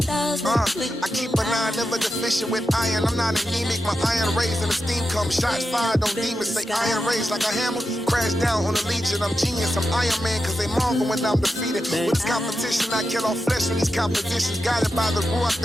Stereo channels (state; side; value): normal; both; correlation 0.89